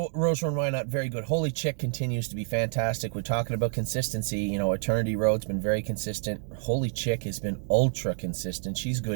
Rose Run, why not? Very good. Holy Chick continues to be fantastic. We're talking about consistency. You know, Eternity Road's been very consistent. Holy Chick has been ultra consistent. She's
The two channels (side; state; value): left; silent; 59 dB below the other